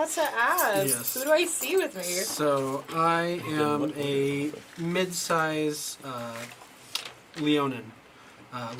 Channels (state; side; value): identical; both; correlation 1.00